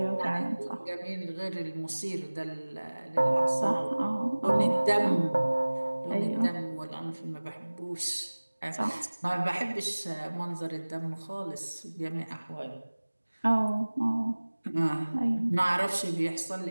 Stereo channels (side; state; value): both; inverted; correlation -1.00